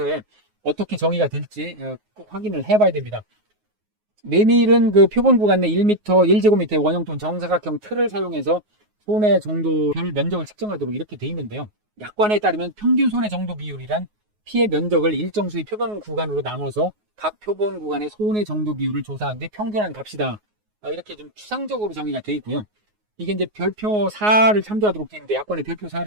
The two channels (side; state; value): left; late; 9.5 ms